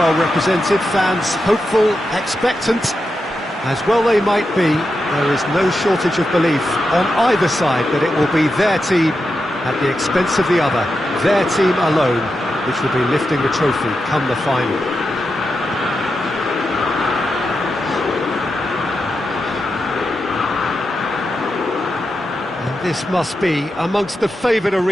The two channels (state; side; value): normal; both; correlation 0.88